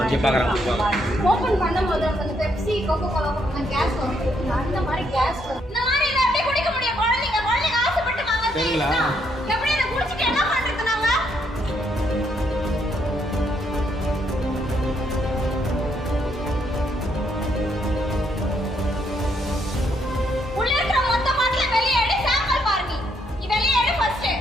open பண்ணும்போது அந்த பெப்சி கோகோ கோலா கேஸ் வரும் அந்த மாதிரி கேஸ் இந்த மாதிரி இத அப்படியே குடிக்க முடியும் குழந்தைங்க ஆசைப்பட்டு வாங்குறீங்களா எப்படி இத குடிச்சிட்டு என்ன பண்றது நாங்க உள்ள இருக்க மொத்த பாட்டில வெளிய எடு சாம்பிள் பாருங்க நீ வெளிய எடு ஃபர்ஸ்ட்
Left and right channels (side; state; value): both; normal; correlation 0.73